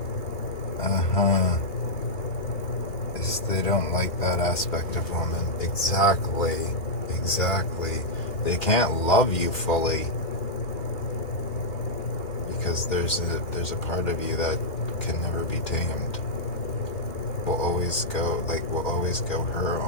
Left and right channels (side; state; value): right; late; 2.4 ms